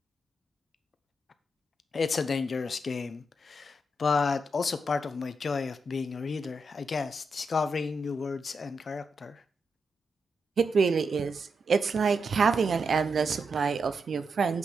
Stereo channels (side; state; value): both; normal; correlation 0.84